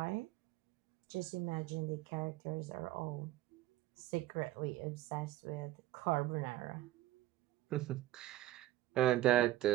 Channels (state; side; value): quieter; left; 14.8 dB